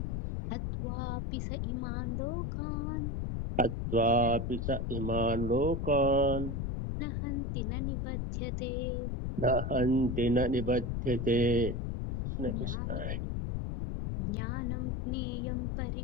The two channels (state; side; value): noise; left; rumble, 1 dB below the sound